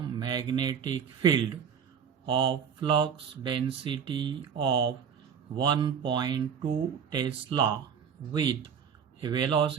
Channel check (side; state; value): left; quieter; 7.3 dB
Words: magnetic field of flux density of 1.2 Tesla with a